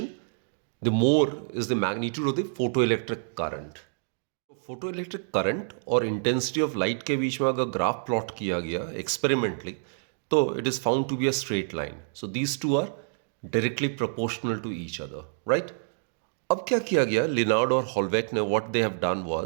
the more is the magnitude of the photoelectric current. Photoelectric current और intensity of light के बीच में अगर graph plot किया गया experimentally, तो it is found to be a straight line. So these two are directly proportional to each other, right? अब क्या किया गया, लिनार्ड और हॉलवेक ने what they have done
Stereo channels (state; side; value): silent; left; digital silence